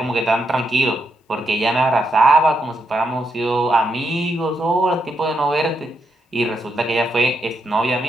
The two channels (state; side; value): normal; both; correlation 0.81